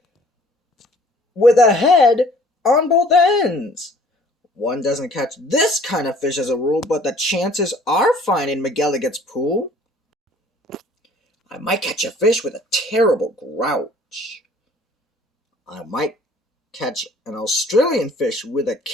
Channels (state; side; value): normal; both; correlation 0.55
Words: with a head on both ends. One doesn't catch this kind of fish as a rule, but the chances are fine in McElligot's Pool. I might catch a fish with a terrible grouch. I might catch an Australian fish with a